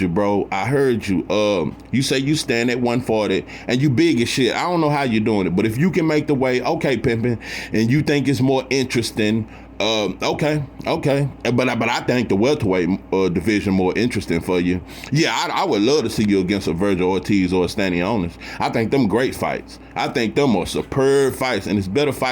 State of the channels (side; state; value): both; identical; correlation 1.00